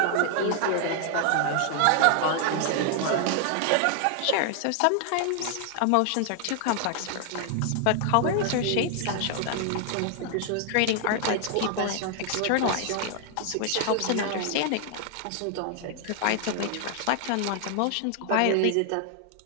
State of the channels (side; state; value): both; different; correlation 0.00